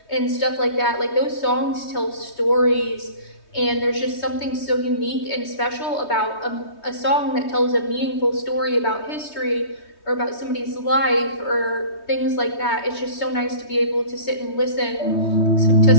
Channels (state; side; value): late; right; 3.2 ms